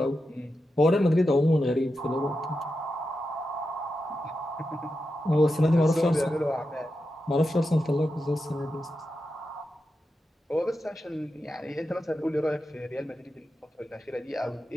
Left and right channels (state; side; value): normal; both; correlation 0.89